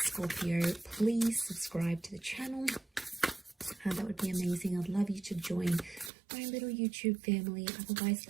Please subscribe to the channel. That would be amazing. I'd love you to join my little YouTube family. Otherwise,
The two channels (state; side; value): drops out; left; at 6.1 s